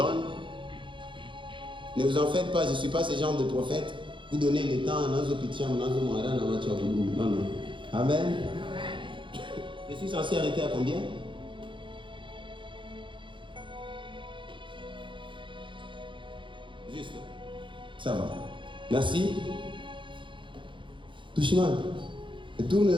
Ne vous en faites pas, je ne suis pas ce genre de prophète. Vous donnez le temps à Nazo Pitiam, Nazo Moara, Namacho Abougou. Non, non. Amen. Je suis censé arrêter à combien? Juste. Ça va. Merci. Touchiman, tourne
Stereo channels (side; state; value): left; late; 0.24 ms